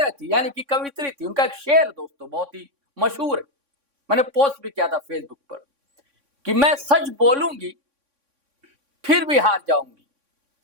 थी, यानी कि कवित्री थी। उनका एक शेर दोस्तों बहुत ही मशहूर है, मैंने पोस्ट भी किया था फेसबुक पर कि मैं सच बोलूंगी फिर भी हार जाऊंगी,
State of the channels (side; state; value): left; late; 3.6 ms